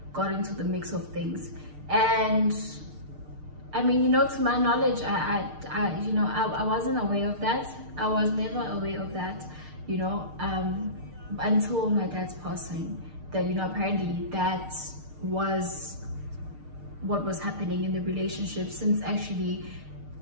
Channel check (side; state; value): left; late; 6.6 ms